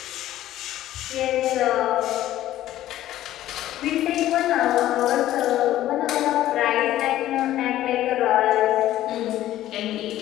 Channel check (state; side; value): quieter; right; 13.7 dB